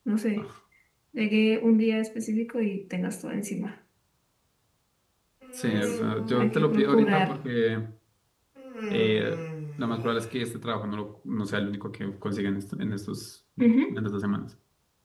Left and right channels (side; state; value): both; identical; correlation 1.00